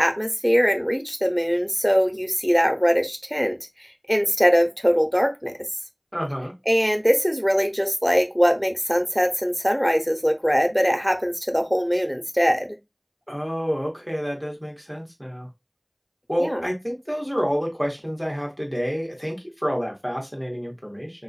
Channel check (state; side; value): identical; both; correlation 1.00